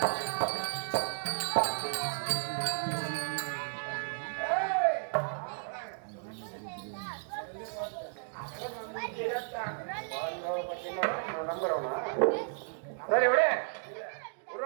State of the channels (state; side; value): silent; left; digital silence